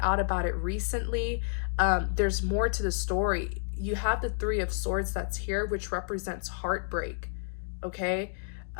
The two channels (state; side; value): silent; right; digital silence